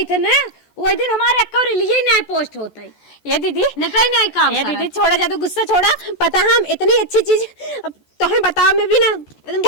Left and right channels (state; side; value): late; right; 14 ms